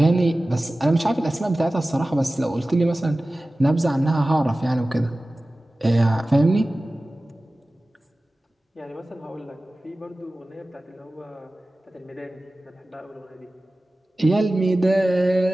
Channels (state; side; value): normal; both; correlation 0.97